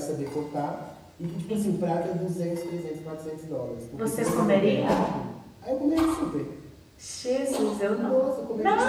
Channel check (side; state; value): both; identical; correlation 1.00